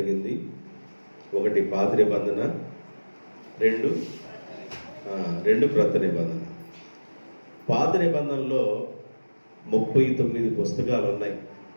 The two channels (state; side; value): inverted; both; correlation -1.00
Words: ఒకటి పాత నిబంధన, రెండు క్రొత్త నిబంధన. పాత నిబంధనలో 39 పుస్తకాలు ఉన్నాయి.